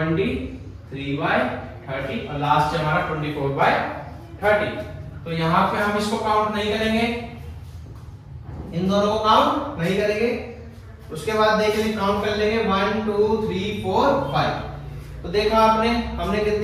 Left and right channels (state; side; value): identical; both; correlation 1.00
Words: और लास्ट है हमारा 24/30। तो यहाँ पे हम इसको काउंट नहीं करेंगे, इन दोनों को काउंट नहीं करेंगे। उसके बाद देखेंगे, काउंट कर लेंगे 1 2 3 4 5। तो देखा आपने, हमने